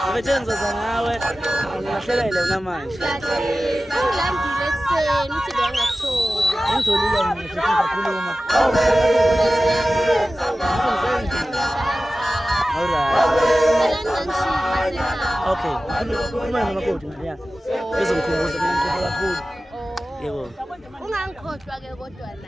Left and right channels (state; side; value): normal; both; correlation 0.95